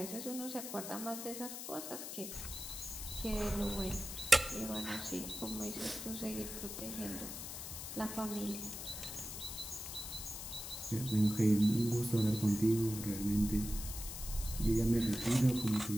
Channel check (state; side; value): noise; left; hiss, 8 dB below the sound